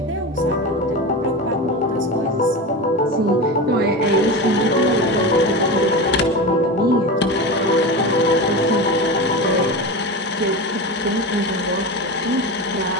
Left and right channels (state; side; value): normal; both; correlation 0.24